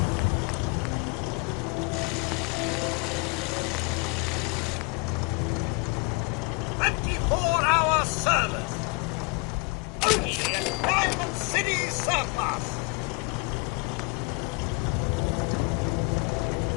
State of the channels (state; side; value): quieter; right; 29.7 dB